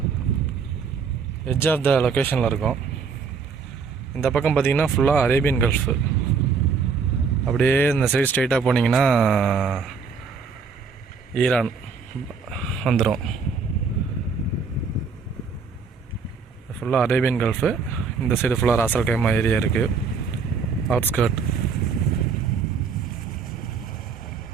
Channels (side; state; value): left; quieter; 5.4 dB